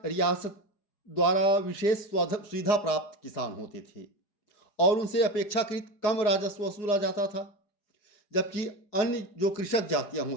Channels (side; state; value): right; late; 4.9 ms